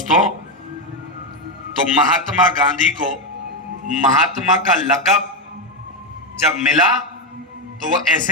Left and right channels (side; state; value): both; normal; correlation 0.07